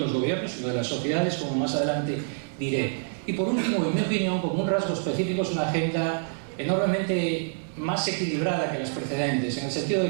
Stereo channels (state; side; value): silent; left; 60 dB below the other